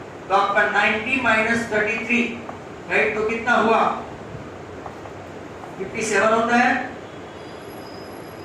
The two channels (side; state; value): both; identical; correlation 1.00